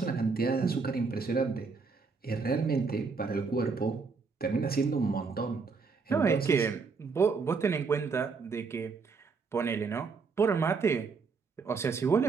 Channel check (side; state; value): left; quieter; 4.8 dB